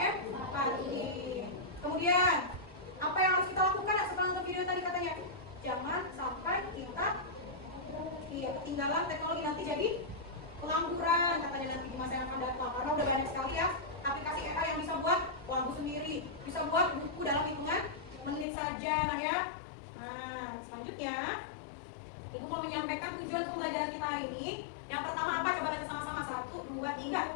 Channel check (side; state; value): right; drops out; at 18.4 s